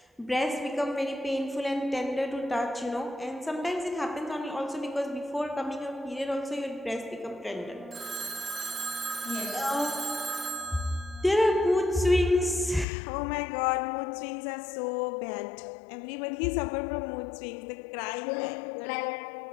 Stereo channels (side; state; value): right; drops out; at 12.9 s